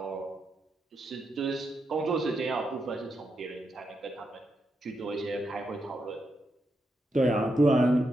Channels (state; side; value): normal; both; correlation 0.83